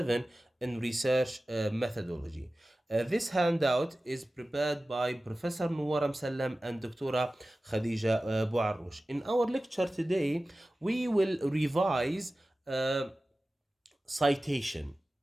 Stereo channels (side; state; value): both; normal; correlation 0.96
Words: in research methodology. This handout is prepared by Professor Nuwar Msallam and Dr. Khadija Bouarrouch. In our lecture today, we will revise citation.